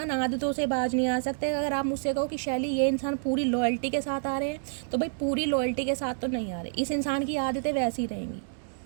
आदतों से बाज नहीं आ सकते। अगर आप मुझसे कहो कि शैली ये इंसान पूरी लॉयल्टी के साथ आ रहे हैं, तो भाई पूरी लॉयल्टी के साथ तो नहीं आ रहे। इस इंसान की आदतें वैसी रहेंगी,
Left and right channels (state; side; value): silent; left; digital silence